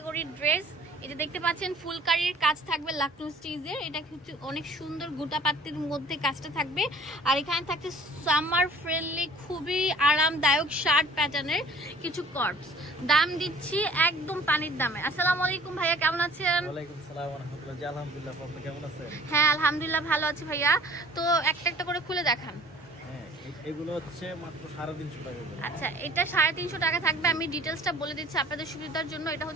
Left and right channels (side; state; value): both; normal; correlation 0.51